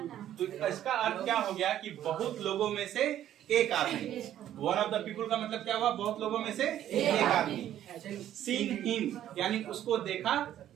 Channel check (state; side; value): quieter; left; 11.6 dB